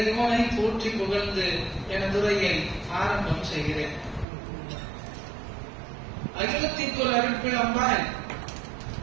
போற்றி புகழ்ந்து எனது உரையை ஆரம்பம் செய்கிறேன். அகிலத்திற்கு ஒரு அருட்பிழம்பாய்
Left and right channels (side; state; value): left; drops out; at 4.2 s